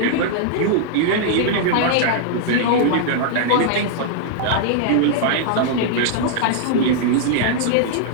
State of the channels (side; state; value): both; different; correlation -0.01